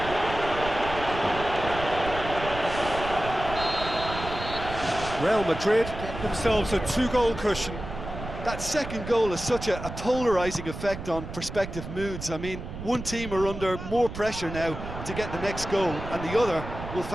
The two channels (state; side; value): noise; right; rumble, 9 dB below the sound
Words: Real Madrid get themselves a 2-goal cushion. That second goal has such a polarising effect on prospective moods. I mean, one team are under more pressure now to get the next goal, and the other will